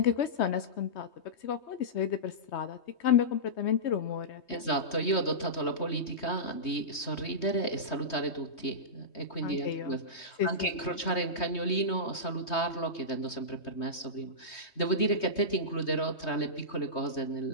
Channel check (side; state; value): right; late; 3.2 ms